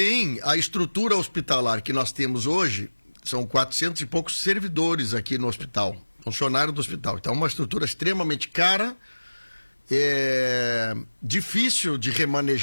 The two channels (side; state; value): both; inverted; correlation -1.00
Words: a estrutura hospitalar que nós temos hoje, são 400 e poucos servidores aqui no hospital, funcionários do hospital. Então, é uma estrutura extremamente cara, difícil de